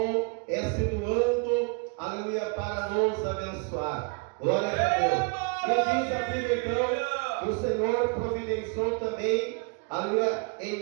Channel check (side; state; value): left; quieter; 33.4 dB